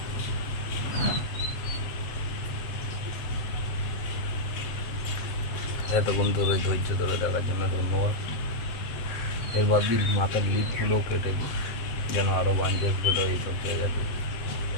এতক্ষণ ধরে ধৈর্য ধরে দেখার জন্য ধন্যবাদ। এবার দিন মাথার লিপগুলোও কেটে দিই যেন আরও বাঞ্চেস বেরো এইসব জায়গাতে,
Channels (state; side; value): late; right; 8.2 ms